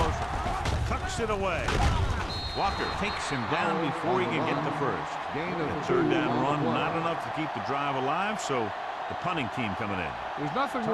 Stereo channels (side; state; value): both; identical; correlation 1.00